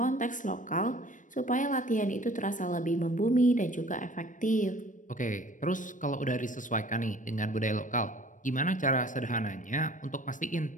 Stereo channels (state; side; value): late; right; 0.37 ms